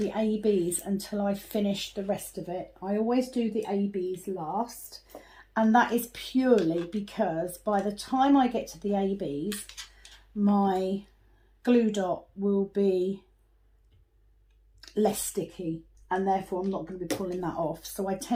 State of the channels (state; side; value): identical; both; correlation 1.00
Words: ABs until I finish the rest of it. I always do the ABs last, and that is purely because by the time I get to the ABs, my glue dot will be less sticky, and therefore I'm not going to be pulling that off. So I